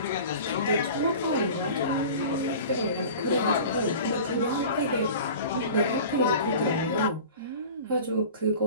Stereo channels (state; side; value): inverted; both; correlation -0.39